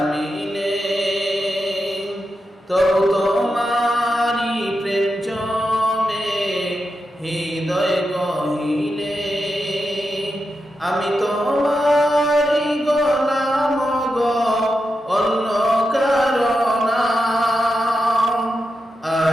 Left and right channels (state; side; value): normal; both; correlation 0.88